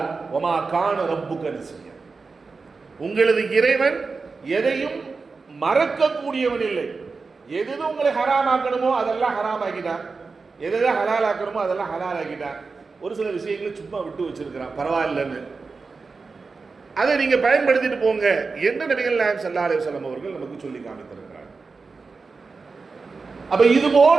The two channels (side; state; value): left; quieter; 4.4 dB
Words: ஒமா கான ரப்புக நசியா, உங்களது இறைவன் எதையும் மறக்கக்கூடியவன் இல்லை. எது உங்களை ஹராமாக்கணுமோ அதெல்லாம் ஹராம் ஆக்கிட்டான், எதை ஹலால் ஆக்கணுமோ அதெல்லாம் ஹலால் ஆக்கிட்டான். ஒரு சில விஷயங்களை சும்மா விட்டு வச்சிருக்கிறான், பரவாயில்லன்னு. அதை நீங்க பயன்படுத்திட்டு போங்க என்று நபிகள் நாயகம் ஸல்லல்லாஹு அலைஹி வஸல்லம் அவர்கள் நமக்கு சொல்லி காமித்திருக்கிறார். அப்ப இது